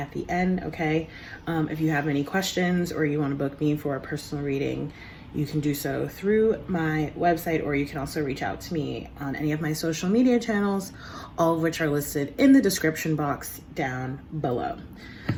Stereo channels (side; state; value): both; identical; correlation 1.00